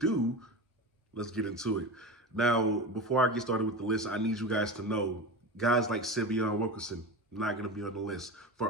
let's get into it. Now, before I get started with the list, I need you guys to know, guys like Syveon Wilkerson, not going to be on the list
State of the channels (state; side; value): normal; both; correlation 0.26